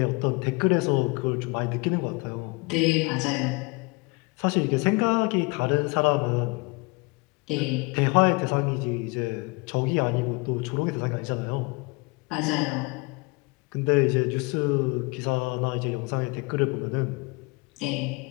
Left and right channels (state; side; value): quieter; right; 27.7 dB